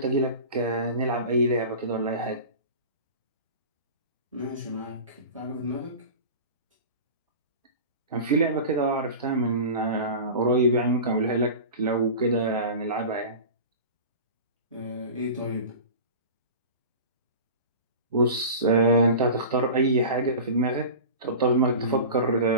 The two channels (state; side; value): inverted; both; correlation -0.34